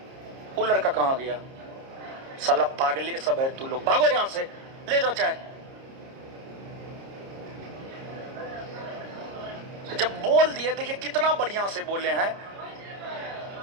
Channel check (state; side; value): late; left; 30 ms